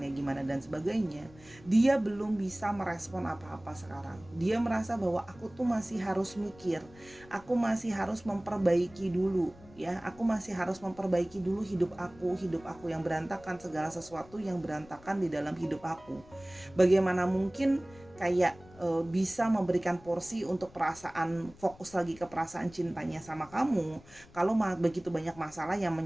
gimana dan sebagainya, dia belum bisa merespon apa-apa sekarang. Dia merasa bahwa aku tuh masih harus mikir, aku masih harus memperbaiki dulu ya, aku masih harus memperbaiki dulu hidup aku yang berantakan, segala sesuatu yang berantakan di dalam hidup aku. Bagaimana mungkin kayak bisa memberikan porsi untuk perasaan, fokus lagi ke perasaan cintanya sama kamu kalau begitu banyak masalah yang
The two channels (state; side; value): noise; left; rumble, 23 dB below the sound